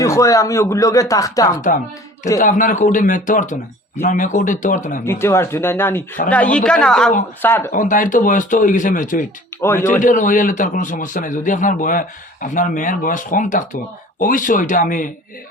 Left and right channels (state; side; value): normal; both; correlation 0.47